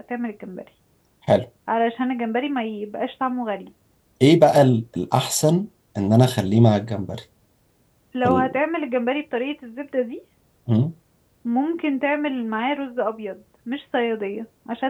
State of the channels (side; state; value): both; identical; correlation 1.00